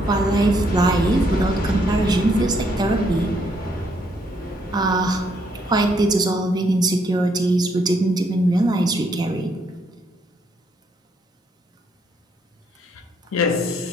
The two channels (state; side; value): normal; both; correlation 0.72